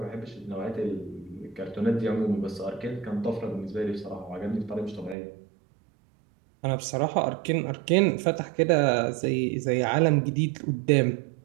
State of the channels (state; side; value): drops out; left; at 5.2 s